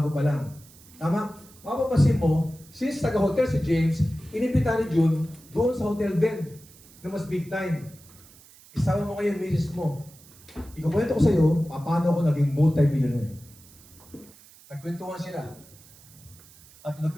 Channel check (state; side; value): noise; right; hiss, 24 dB below the sound